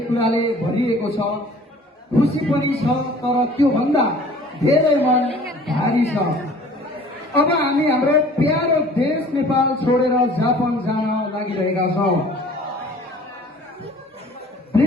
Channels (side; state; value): both; normal; correlation 0.49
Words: कुराले भरिएको छ, खुसी पनि छ, तर त्योभन्दा धेरै मन भारी छ। अब हामी हाम्रो प्यारो देश नेपाल छोडेर जापान जान लागिरहेका छौँ।